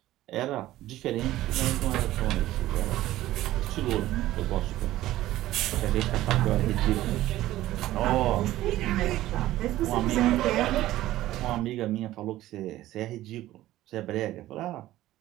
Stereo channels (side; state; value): left; quieter; 15.2 dB